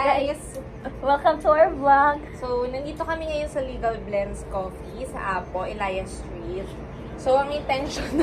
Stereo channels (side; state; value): both; identical; correlation 1.00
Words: Welcome to our vlog. So, nandito kami ngayon sa Legal Blends Coffee sa Apo, Elias Street. So, ang